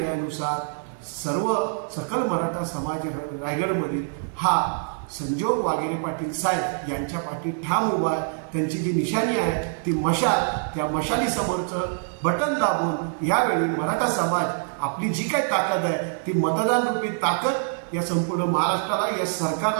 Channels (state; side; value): silent; left; digital silence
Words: सर्व सकल मराठा समाज रायगडमधील हा संजोग वाघेरे पाटील साहेब यांच्या पाठी ठाम उभा आहे. त्यांची जी निशाणी आहे ती मशाल, त्या मशालीसमोरचं बटन दाबून यावेळी मराठा समाज आपली जी काही ताकद आहे ती मतदान रूपी ताकद या संपूर्ण महाराष्ट्राला, या